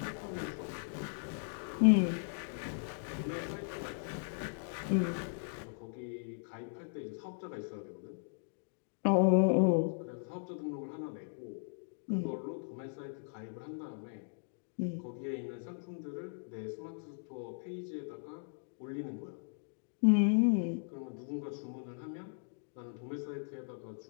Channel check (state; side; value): silent; right; digital silence